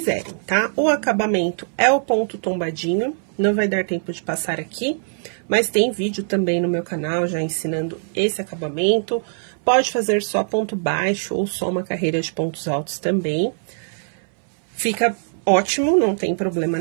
tá? O acabamento é o ponto tombadinho, não vai dar tempo de passar aqui, mas tem vídeo também no meu canal já ensinando esse acabamento. Pode fazer só ponto baixo ou só uma carreira de pontos altos também. Fica ótimo, não tem problema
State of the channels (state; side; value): silent; left; 64 dB below the other